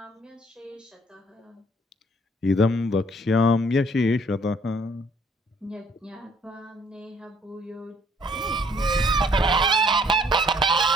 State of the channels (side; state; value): both; normal; correlation 0.62